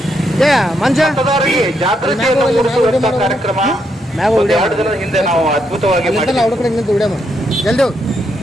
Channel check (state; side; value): normal; both; correlation 0.78